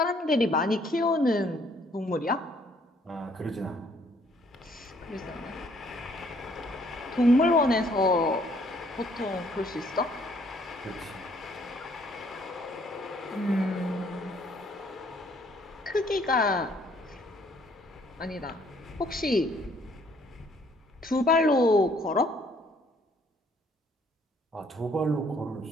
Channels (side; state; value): both; normal; correlation 0.64